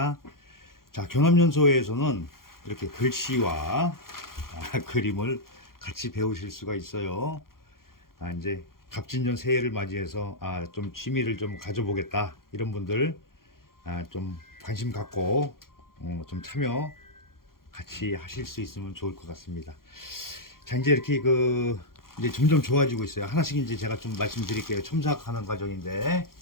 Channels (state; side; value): late; right; 0.92 ms